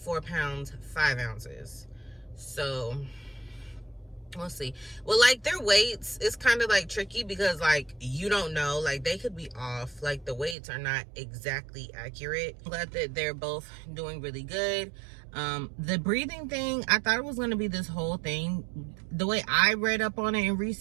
pounds 5 ounces. So we'll see. Well, like their weights is kind of like tricky, because like you don't know, like they could be off, like the weights are not exactly accurate. I'm glad that they're both doing really good. The breathing thing, I thought it was going to be this whole thing. The way I read up on it and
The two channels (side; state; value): left; drops out; at 10.6 s